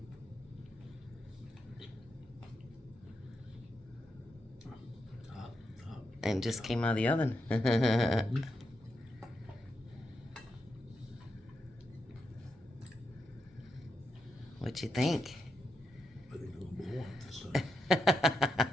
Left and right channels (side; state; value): both; normal; correlation 0.84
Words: Hot, hot. And just came out of the oven. Mm-hmm. What you think? I think it'll blow up this time.